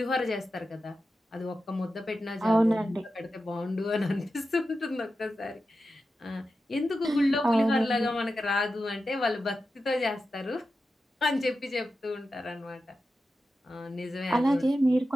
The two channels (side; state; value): both; normal; correlation 0.91